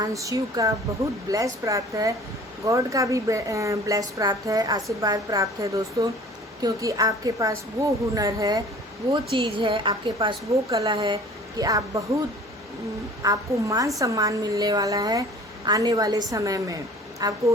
शिव का बहुत ब्लेस प्राप्त है, गॉड का भी ब्लेस प्राप्त है, आशीर्वाद प्राप्त है दोस्तों। क्योंकि आपके पास वो हुनर है, वो चीज़ है, आपके पास वो कला है कि आप बहुत आपको मान सम्मान मिलने वाला है। आने वाले समय में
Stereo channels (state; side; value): normal; both; correlation 0.47